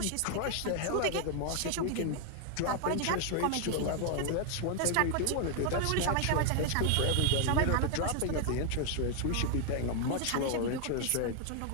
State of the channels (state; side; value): different; both; correlation 0.00